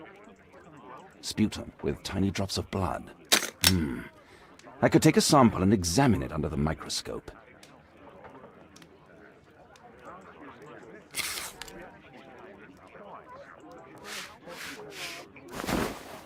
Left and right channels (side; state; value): both; identical; correlation 1.00